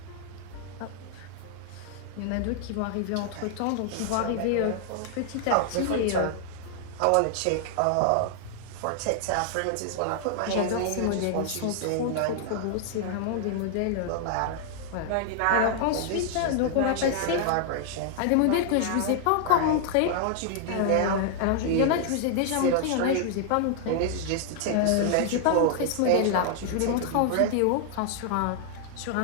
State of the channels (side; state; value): both; different; correlation 0.00